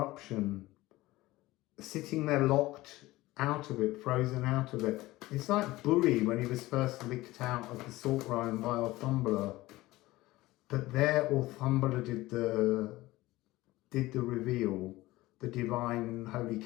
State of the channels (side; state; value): right; quieter; 18.4 dB